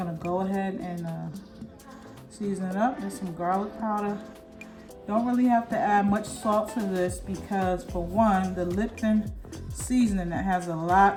go ahead and season it up. There's some garlic powder. Don't really have to add much salt to this because, for one, the Lipton seasoning that has a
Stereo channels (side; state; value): both; identical; correlation 1.00